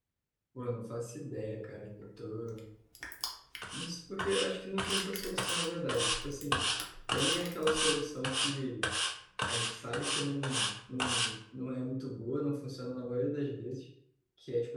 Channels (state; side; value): identical; both; correlation 1.00